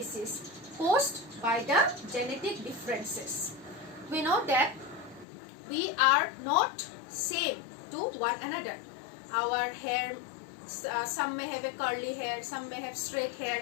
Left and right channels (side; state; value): right; drops out; at 5.2 s